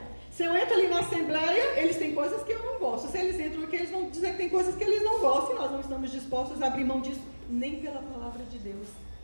Se eu entro ali na assembleia, eles têm coisas que eu não gosto. Se eles entram aqui, eles vão dizer que tem coisas que eles não gostam. E nós não estamos dispostos a abrir mão disso, nem pela palavra de Deus.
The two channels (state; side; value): inverted; both; correlation -1.00